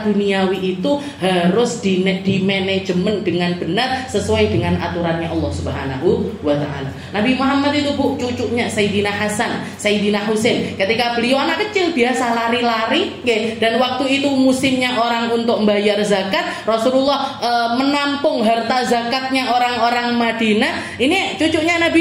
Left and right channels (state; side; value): identical; both; correlation 1.00